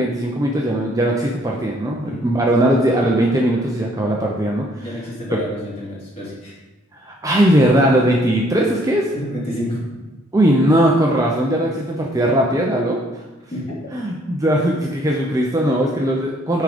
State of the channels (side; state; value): both; normal; correlation 0.65